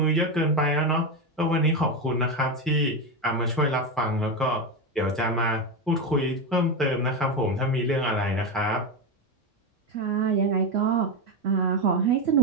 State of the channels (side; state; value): both; normal; correlation 0.13